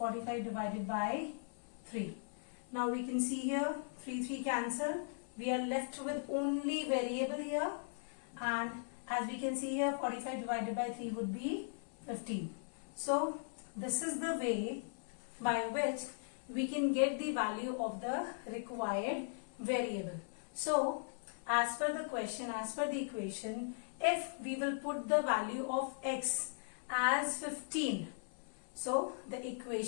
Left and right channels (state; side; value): silent; right; 52 dB below the other